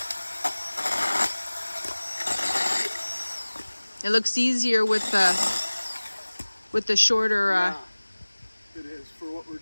It looks easier with the shorter. Yeah, it is for what we're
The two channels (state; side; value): inverted; both; correlation -1.00